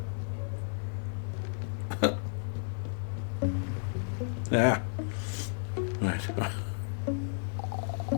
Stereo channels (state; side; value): silent; right; 56 dB below the other